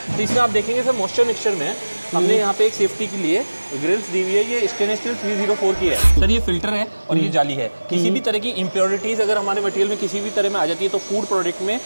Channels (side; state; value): both; inverted; correlation -1.00